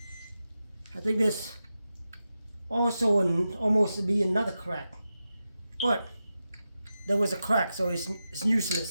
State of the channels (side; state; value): both; inverted; correlation -0.91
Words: I think there's also almost to be another crack, but there was a crack, so it's